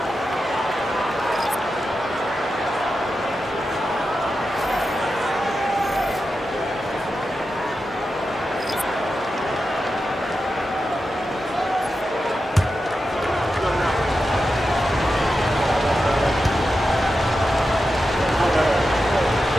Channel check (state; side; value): normal; both; correlation 0.90